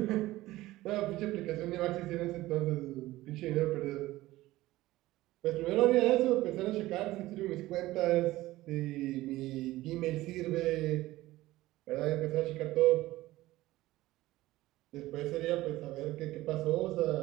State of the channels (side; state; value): left; quieter; 17.3 dB